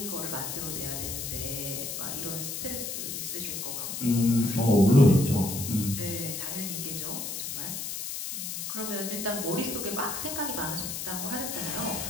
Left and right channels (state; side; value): noise; left; hiss, 5 dB below the sound